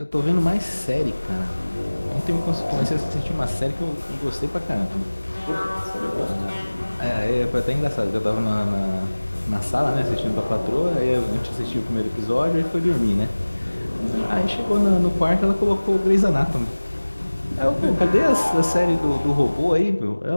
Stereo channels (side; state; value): both; inverted; correlation -1.00